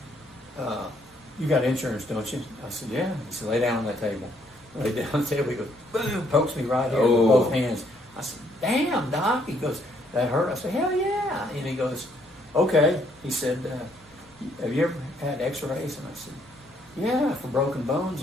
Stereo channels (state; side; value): noise; left; rumble, 29 dB below the sound